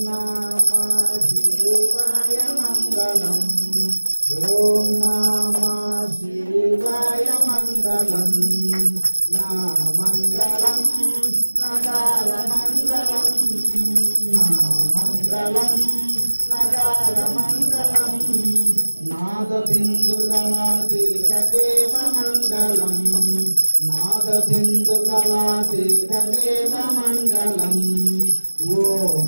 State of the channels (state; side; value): inverted; both; correlation -1.00